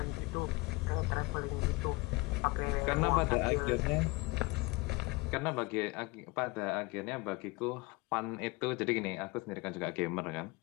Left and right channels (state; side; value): quieter; right; 24.1 dB